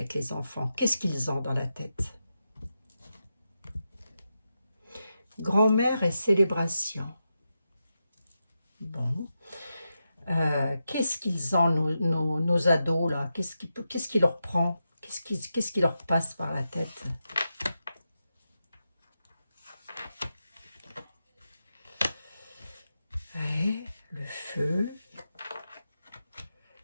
les enfants? Qu'est-ce qu'ils ont dans la tête? Grand-mère et célébration. Bon. Qu'est-ce qu'ils ont, nos ados, là? Qu'est-ce qui leur prend? Qu'est-ce qui leur passe par la tête? Ouais, le feu.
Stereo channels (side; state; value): both; inverted; correlation -0.88